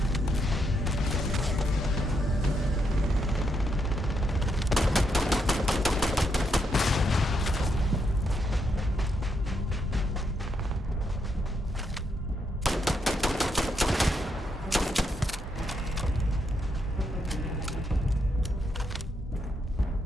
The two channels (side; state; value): both; normal; correlation 0.79